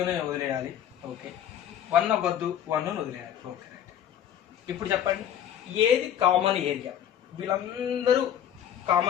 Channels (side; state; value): right; quieter; 10.1 dB